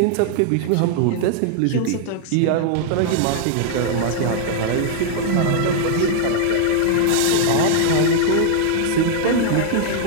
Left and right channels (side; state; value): both; different; correlation 0.00